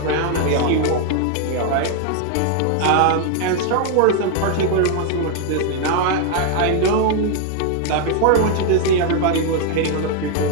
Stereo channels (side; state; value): both; different; correlation 0.00